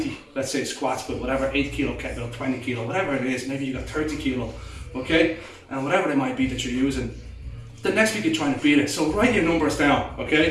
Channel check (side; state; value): both; identical; correlation 1.00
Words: let's say squats with whatever, 8 kilo kettlebell, 20 kilo, whatever it is, maybe you got 30 kilo, okay? And whatever it might be that you're using, the next week you're trying to beat it. So write your numbers down,